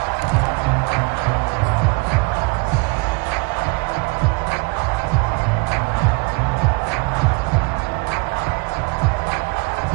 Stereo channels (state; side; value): quieter; left; 28.4 dB